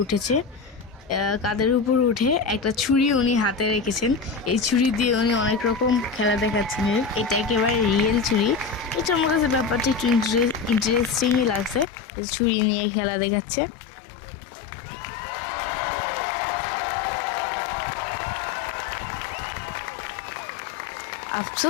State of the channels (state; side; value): drops out; right; at 11.9 s